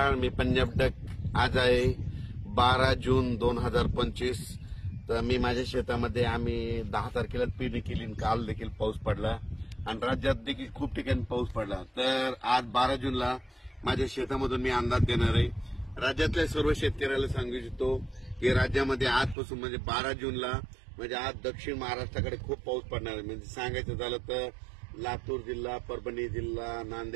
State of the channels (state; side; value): drops out; left; at 19.4 s